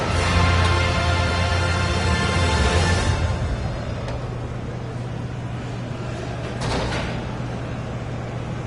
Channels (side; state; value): both; identical; correlation 1.00